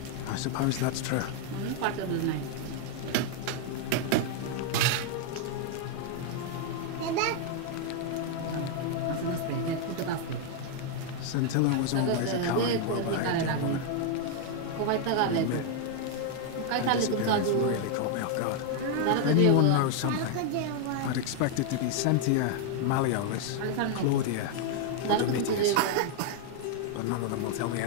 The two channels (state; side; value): different; both; correlation 0.00